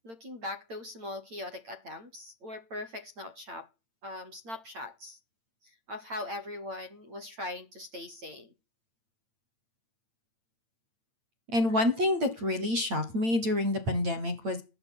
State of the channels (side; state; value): left; late; 8.8 ms